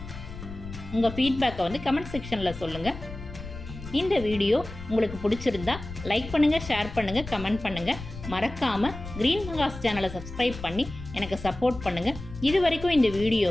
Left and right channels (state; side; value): noise; left; rumble, 12 dB below the sound